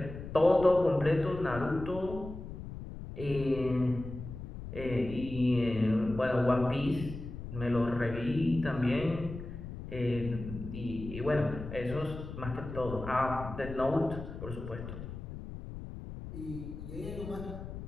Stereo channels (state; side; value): noise; left; rumble, 10 dB below the sound